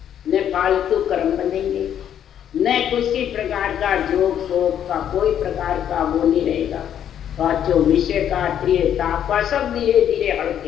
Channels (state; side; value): quieter; right; 9.7 dB